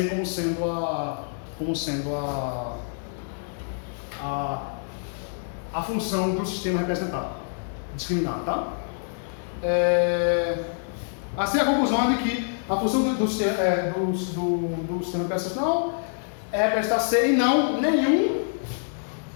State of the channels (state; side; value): silent; right; digital silence